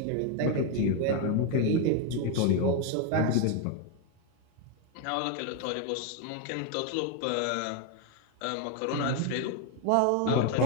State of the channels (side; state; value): both; different; correlation 0.02